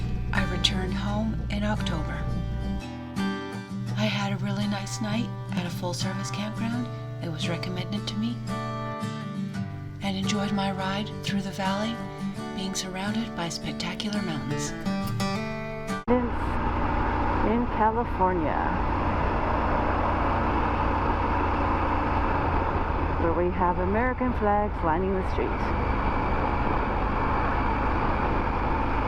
I returned home in October. I had a really nice night at a full-service campground that was recommended to me, and enjoyed my ride through the valley, being surrounded by spectacular mountains. In California, where we have American flags lining the streets.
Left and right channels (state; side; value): identical; both; correlation 1.00